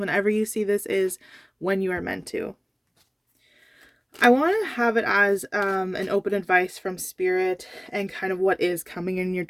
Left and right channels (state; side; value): identical; both; correlation 1.00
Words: you see this is when you are meant to. I want to have it as an open advice from spirit and kind of what is coming in your